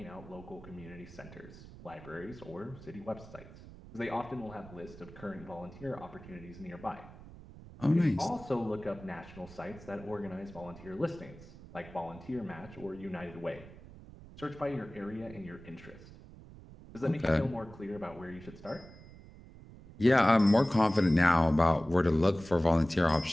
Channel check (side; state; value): right; noise; rumble, 18 dB below the sound